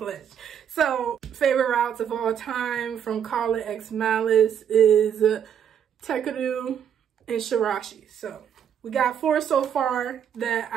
So favorite routes of all time from Call It X Malice is Takeru and Shirashi. So we got 4 so far that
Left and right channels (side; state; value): left; quieter; 8.7 dB